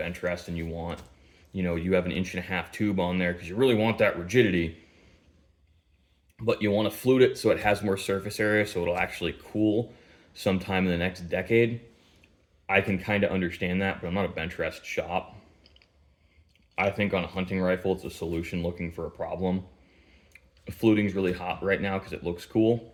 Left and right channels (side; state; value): both; identical; correlation 1.00